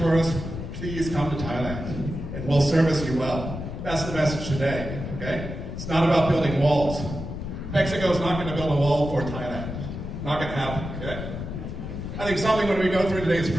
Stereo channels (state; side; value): noise; left; rumble, 7 dB below the sound